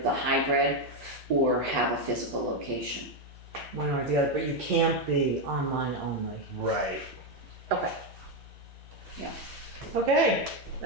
hybrid or have a physical location. One or the other, but you can't be online only. Right. Okay. Okay,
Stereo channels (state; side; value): normal; both; correlation 0.05